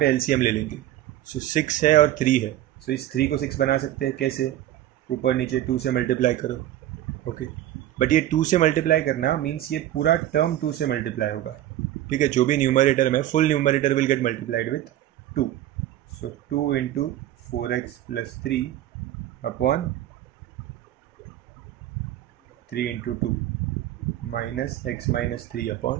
एलसीएम ले लेंगे. सो 6 है और 3 है. सो इस 3 को 6 बना सकते हैं. कैसे? ऊपर नीचे 2 से मल्टीप्लाई करो. ओके, बट ये 2 से मल्टीप्लाई करना मीन्स ये पूरा टर्म 2 से मल्टीप्लाई होगा. ठीक है, जो भी न्यूमरेटर में, full numerator will get multiplied with 2. So 2 into 4x plus 3 upon 3 into 2 minus x minus 3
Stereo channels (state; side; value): quieter; left; 13.2 dB